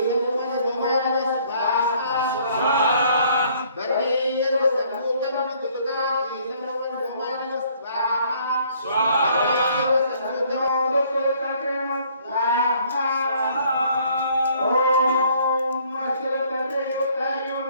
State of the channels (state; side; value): inverted; both; correlation -0.61